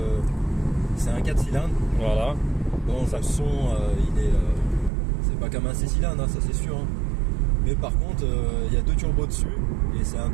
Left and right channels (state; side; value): drops out; left; at 4.9 s